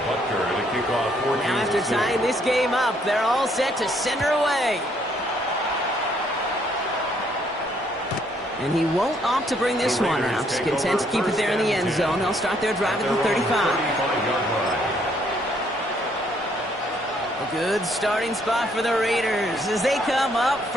Butker to kick off 14. Now after tying this game up, they're all set to send her away. And he won't opt to bring this one out. Content to keep it there in the end zone. They'll start their drive at the 35. A good starting spot for the Raiders as they come up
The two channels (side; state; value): both; normal; correlation 0.68